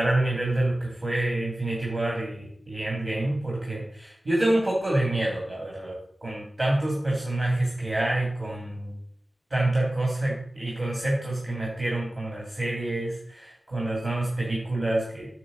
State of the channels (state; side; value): normal; both; correlation 0.96